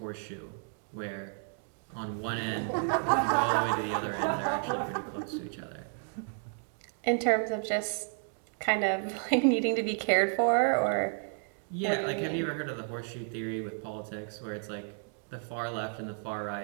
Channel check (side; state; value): left; silent; 56 dB below the other